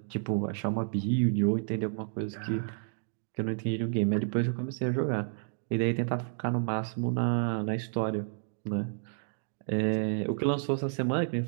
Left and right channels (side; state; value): left; silent; digital silence